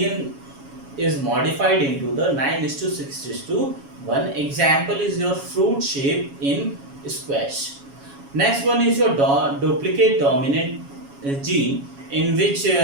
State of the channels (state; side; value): late; left; 7.2 ms